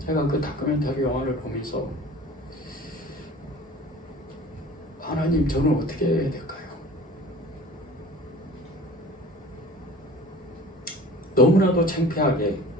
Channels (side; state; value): both; normal; correlation 0.43